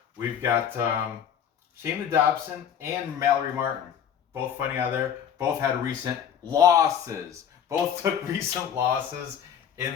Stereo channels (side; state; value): right; quieter; 8.7 dB